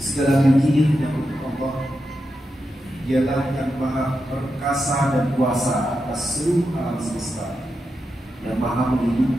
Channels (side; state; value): both; normal; correlation 0.88